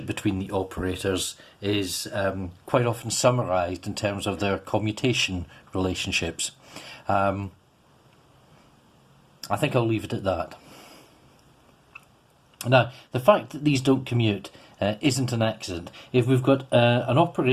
between the operators is quite often summarized in terms of their commutation relationships. I think I'll leave it at that. Now, the fact that these don't commute isn't an accident. If we've got an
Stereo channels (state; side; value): identical; both; correlation 1.00